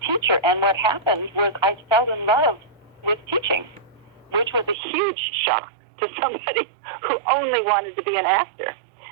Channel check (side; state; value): left; drops out; at 4.8 s